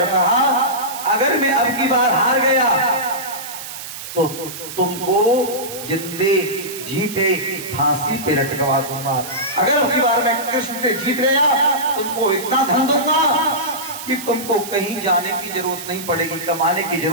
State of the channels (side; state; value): right; noise; hiss, 10 dB below the sound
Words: कहा, अगर मैं अब की बार हार गया तो तुमको जिंदे जी पे फांसी पे लटकवा दूंगा। अगर अब की बार मैं कृष्ण से जीत गया, तुमको इतना धन दूंगा कि तुमको कहीं जाने की जरूरत नहीं पड़ेगी, कमाने की